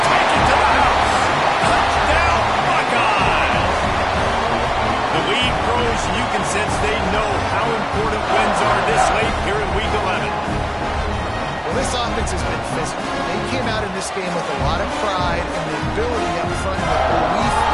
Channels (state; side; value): identical; both; correlation 1.00